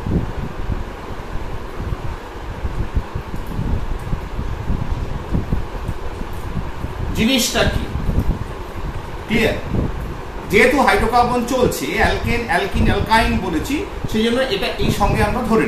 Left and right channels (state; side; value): identical; both; correlation 1.00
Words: জিনিসটা কি ক্লিয়ার? যেহেতু হাইড্রোকার্বন চলছে, অ্যালকেন, অ্যালকিন, অ্যালকাইন বলেছি, সেই জন্য এটা এই সঙ্গে আমরা ধরে